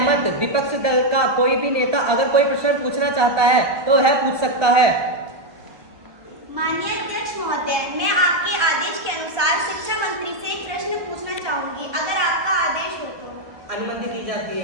विपक्ष दल का कोई भी नेता अगर कोई प्रश्न पूछना चाहता है तो वह पूछ सकता है। माननीय अध्यक्ष महोदय, मैं आपके आदेश के अनुसार शिक्षा मंत्री से एक प्रश्न पूछना चाहूंगी, अगर आपका आदेश हो तो। अनुमति दी जाती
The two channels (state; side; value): late; left; 1.2 ms